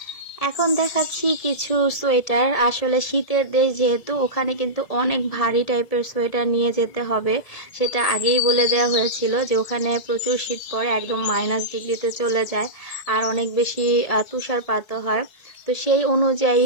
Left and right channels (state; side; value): late; right; 1.7 ms